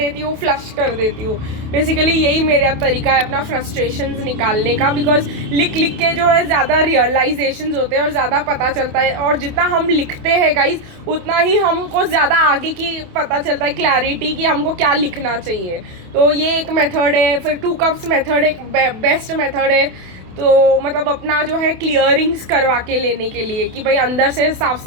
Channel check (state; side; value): late; left; 28 ms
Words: हूँ, फ्लश कर देती हूँ। बेसिकली यही मेरा तरीका है अपना फ्रस्ट्रेशंस निकालने का, बिकॉज लिख के जो है ज़्यादा रियलाइजेशंस होते हैं और ज़्यादा पता चलता है, और जितना हम लिखते हैं गाइस उतना ही हमको ज़्यादा आगे की पता चलता है, क्लैरिटी कि हमको क्या लिखना चाहिए। तो ये एक मेथड है। फिर 2 कप्स मेथड एक बेस्ट मेथड है। तो मतलब अपना जो है क्लियरिंग्स करवा के लेने के लिए कि भाई अंदर से साफ़